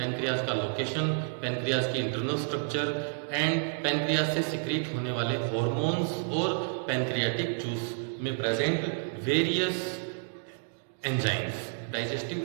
का लोकेशन, पैनक्रियाज की इंटरनल स्ट्रक्चर एंड पैनक्रियाज से सिक्रीट होने वाले हॉर्मोन्स और पैनक्रियाटिक जूस में present various enzymes,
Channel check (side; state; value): left; silent; digital silence